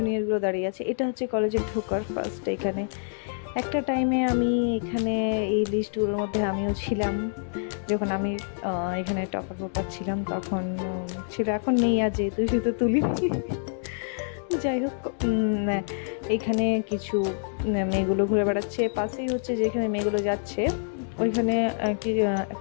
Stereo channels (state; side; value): silent; right; digital silence